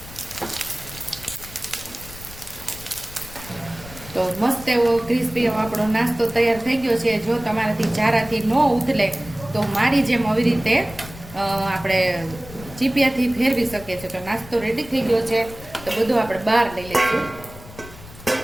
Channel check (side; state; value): left; noise; rumble, 17 dB below the sound